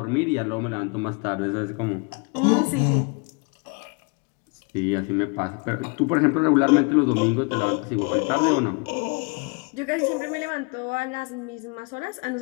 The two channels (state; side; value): quieter; right; 32.6 dB